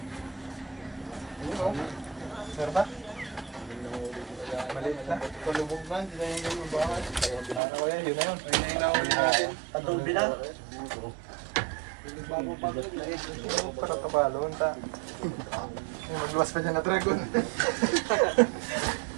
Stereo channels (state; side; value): drops out; left; at 7.6 s